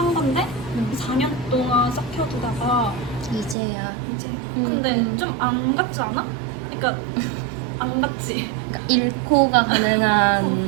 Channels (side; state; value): left; drops out; at 3.6 s